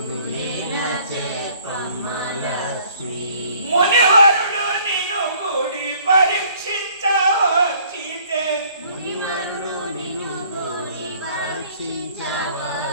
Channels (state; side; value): inverted; both; correlation -0.58